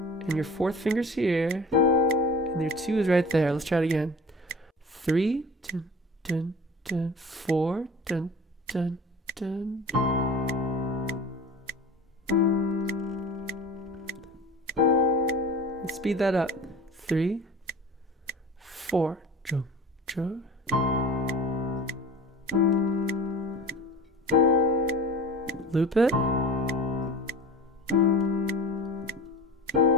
And your 4th finger's here. And your 2 is right there. Let's try it again. 3, dun, dun, dun, 4, dun, dun, dun. Let's speed that up. 3, 4. Jump, jump. Loop it.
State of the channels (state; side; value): normal; both; correlation 0.39